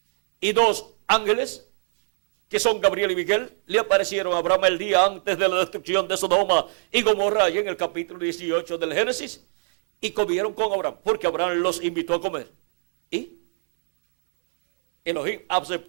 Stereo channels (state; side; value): silent; left; 62 dB below the other